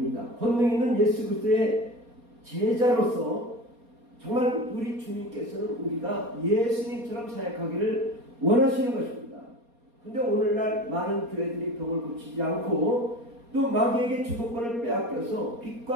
권능 있는 예수 그리스도의 제자로서 정말 우리 주님께서는 우리가 예수님처럼 사역하기를 원하시는 것입니다. 근데 오늘날 많은 교회들이 병을 고치지 않고 또 마귀에게 주도권을 빼앗겨서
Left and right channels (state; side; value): late; left; 4.2 ms